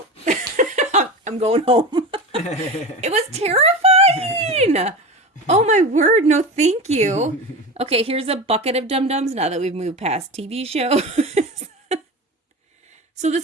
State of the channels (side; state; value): both; normal; correlation 0.27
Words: I'm going home. It was terrifying. Oh my word, no thank you. Okay, here's a bucket of Dum Dums now that we've moved past TV shows. So